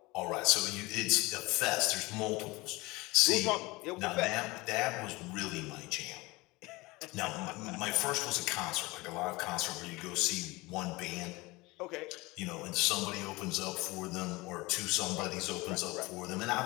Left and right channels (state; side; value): quieter; right; 22.7 dB